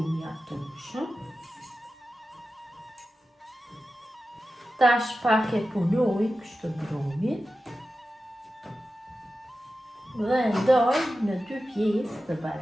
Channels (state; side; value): normal; both; correlation 0.93